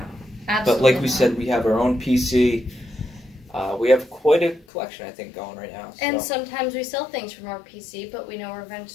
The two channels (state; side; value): drops out; right; at 4.7 s